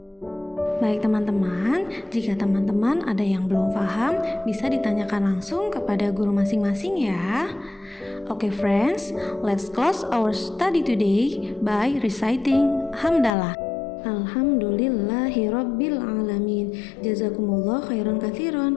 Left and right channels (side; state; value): right; drops out; at 13.3 s